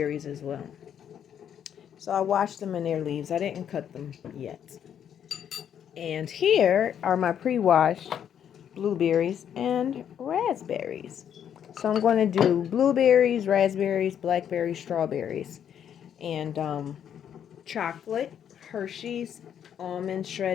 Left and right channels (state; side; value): quieter; right; 9.1 dB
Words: as well. So I washed them in their leaves. I didn't cut them yet. And here are my pre-washed blueberries and raspberries. So I'm going to do blueberries, raspberries, blackberries, strawberries, and chocolate, Hershey's, almond